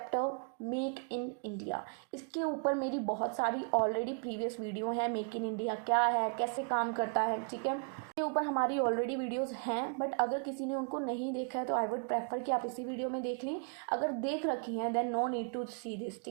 make in India, इसके ऊपर मेरी बहुत सारी ऑलरेडी प्रीवियस वीडियो हैं, मेक इन इंडिया क्या है, कैसे काम करता है, ठीक है, के ऊपर हमारी ऑलरेडी वीडियोस हैं, बट अगर किसी ने उनको नहीं देखा है तो आई वुड प्रेफर कि आप इसी वीडियो में देख लें। अगर देख रखी हैं then no need to see this,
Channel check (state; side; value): quieter; left; 39.7 dB